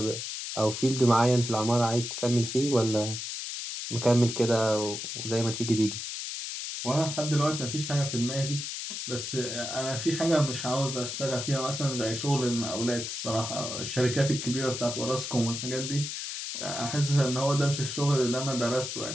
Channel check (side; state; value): left; noise; hiss, 5 dB below the sound